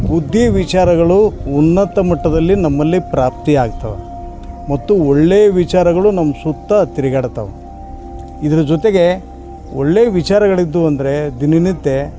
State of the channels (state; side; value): identical; both; correlation 1.00